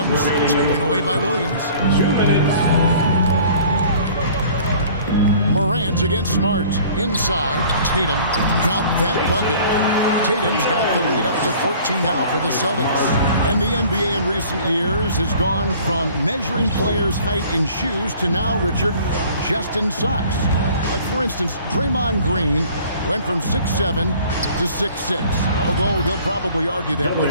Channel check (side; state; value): both; inverted; correlation -0.50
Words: Taken away by Williams. 2 minutes. Morant against Smart. Inside, Tatum got that bucket. Tatum's got the lead up to 14 now for the Celtics. And the NBA in recent years has gone from measuring players' height in shoes to now, Richard, just in socks. Like, for instance, Draymond Green went from 6'7" to 6'6", although he'll probably argue that